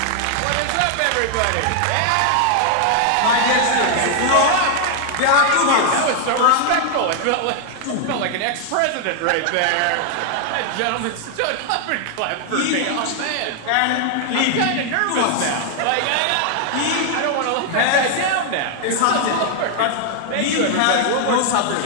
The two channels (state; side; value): different; both; correlation 0.00